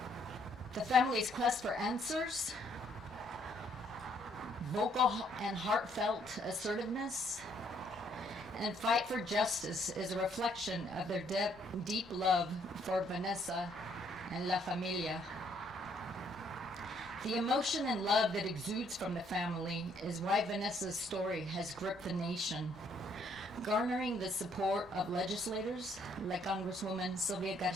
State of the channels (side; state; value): both; normal; correlation 0.68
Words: The family's quest for answers, vocal and heartfelt assertiveness, and fight for justice is a reflection of their deep love for Vanessa and La Familia. The emotion and love that exudes from the family is why Vanessa's story has gripped the nation, garnering the support of legislators like Congresswoman